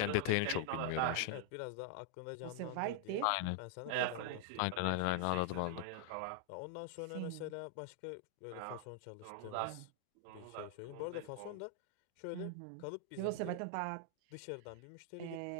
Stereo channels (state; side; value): different; both; correlation 0.00